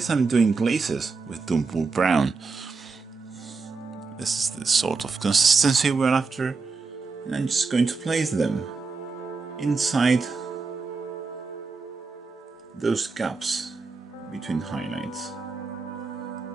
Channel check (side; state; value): left; quieter; 4.4 dB